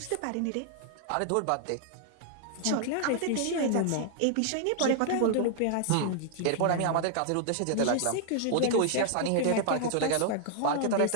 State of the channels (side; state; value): both; different; correlation -0.01